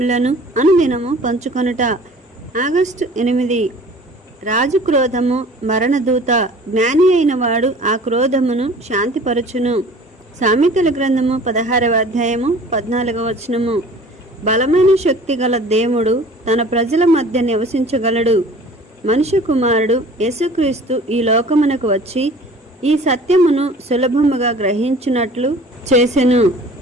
అనుదినము పంచుకొనుట. ఆగస్టు 8. రాజు క్రోధము మరణదూత, జ్ఞాని అయిన వాడు ఆ క్రోధమును శాంతిపరచును. సామెతల గ్రంథము 16వ అధ్యాయము 14వ వచనము. బలమైన శక్తి గల దేవుడు తన ప్రజల మధ్య నివసించగలడు. మనుష్య కుమారుడు యేసుక్రీస్తు ఈ లోకమునకు వచ్చి ఈ సత్యమును సులభముగా గ్రహించినట్లు చేసెను.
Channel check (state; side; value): normal; both; correlation 0.47